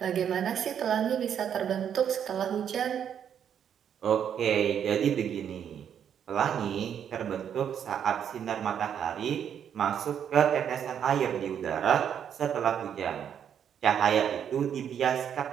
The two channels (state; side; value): quieter; left; 8.7 dB